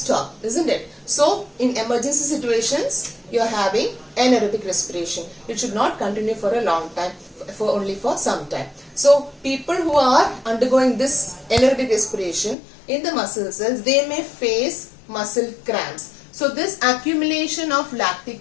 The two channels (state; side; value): drops out; right; at 12.6 s